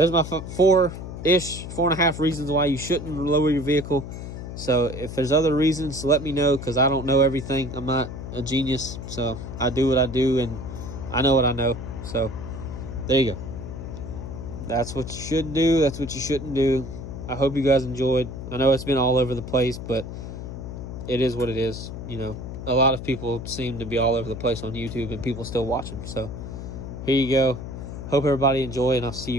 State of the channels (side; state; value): left; noise; hum, 9 dB below the sound